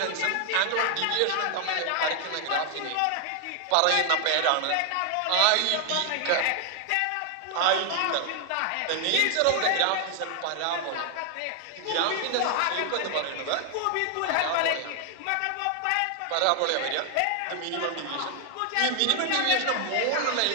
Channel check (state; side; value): different; both; correlation 0.00